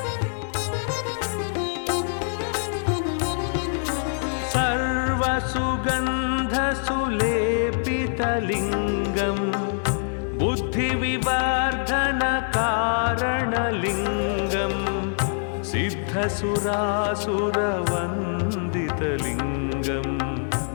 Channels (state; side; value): silent; right; digital silence